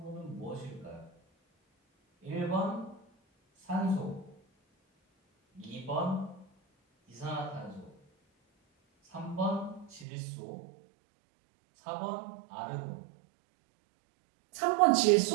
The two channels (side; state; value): left; drops out; at 10.1 s